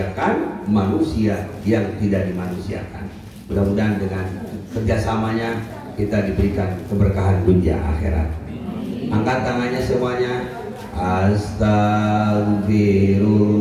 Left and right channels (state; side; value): identical; both; correlation 1.00